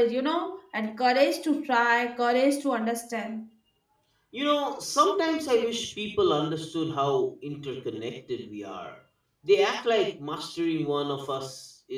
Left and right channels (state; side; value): identical; both; correlation 1.00